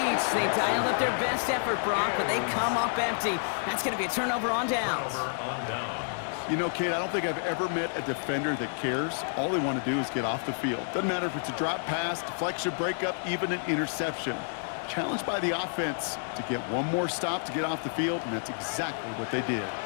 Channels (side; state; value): right; silent; digital silence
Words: They dialed up their best effort, Brock, but they come up empty. That's going to be a turnover on downs. You know, Kate, I don't think I've ever met a defender that cares. All they want to do is get off the field. Doesn't matter if it's a drop pass, deflection, breakup, even an interception. Challenged by the offense to get one more stop to get off the field, and that's exactly what they did.